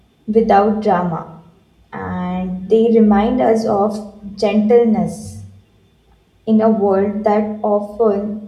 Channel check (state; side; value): identical; both; correlation 1.00